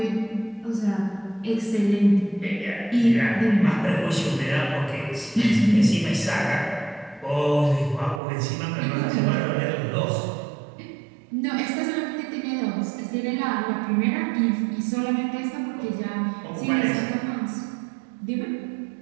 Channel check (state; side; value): drops out; left; at 8.2 s